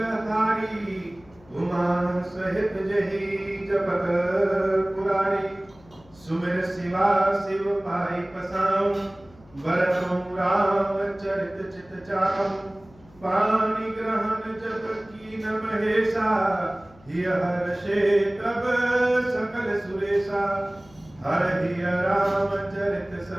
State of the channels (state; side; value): noise; left; hum, 26 dB below the sound